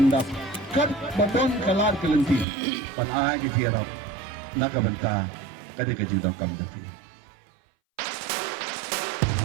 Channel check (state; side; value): drops out; left; at 2.5 s